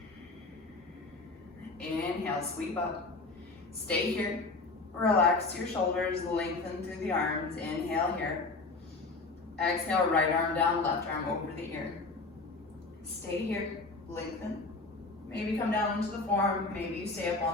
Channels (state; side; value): quieter; right; 3.6 dB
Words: Inhale, sweep up. Stay here. Relax your shoulders, lengthen through the arms. Inhale here. Exhale, right arm down, left arm over the ear. Stay here, lengthen. Maybe come down into the forearm, maybe you stay up